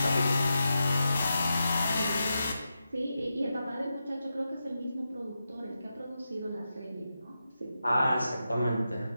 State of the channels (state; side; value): inverted; both; correlation -0.89